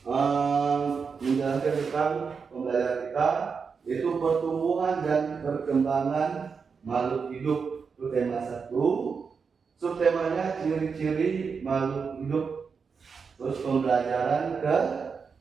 menjelaskan tentang pembelajaran kita, yaitu pertumbuhan dan perkembangan makhluk hidup. Itu tema 1. Subtemanya ciri-ciri makhluk hidup. Terus pembelajaran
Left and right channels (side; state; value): left; quieter; 5.6 dB